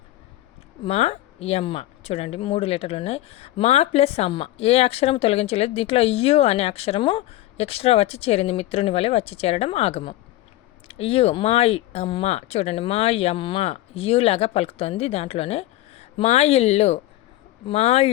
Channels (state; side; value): quieter; right; 15.7 dB